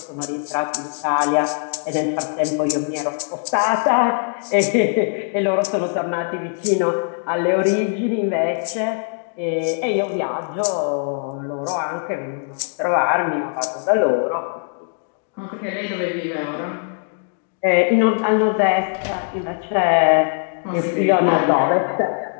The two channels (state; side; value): silent; right; digital silence